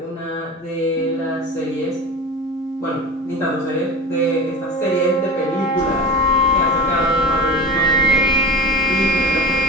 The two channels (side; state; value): both; normal; correlation 0.31